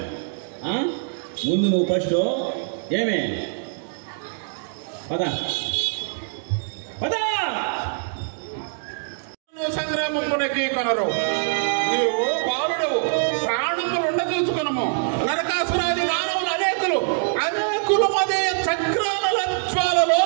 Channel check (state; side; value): silent; left; digital silence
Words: ముందు నువ్వు ఫస్ట్ ఏమే పదా పదా సంగ్రామమునకి కొనరు. నీవు బాలుడవు, ప్రాణములుండ చూసుకునము. నరకాసురాది మానవులు అనేకులు అదే చక్రాల జ్వాలలో